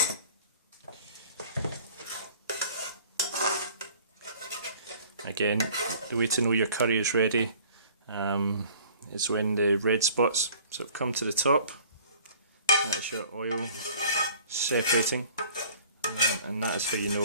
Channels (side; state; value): both; inverted; correlation -0.51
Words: Again, the way to know your curry is ready is when the red spots sort of come to the top. That's your oil separating. And that is how you